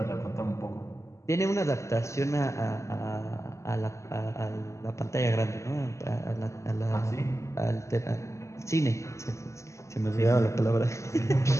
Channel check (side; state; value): right; late; 0.14 ms